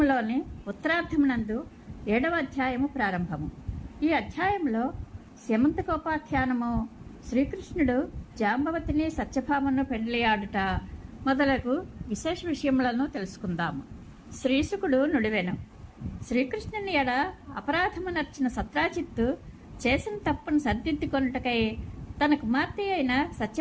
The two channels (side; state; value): both; identical; correlation 1.00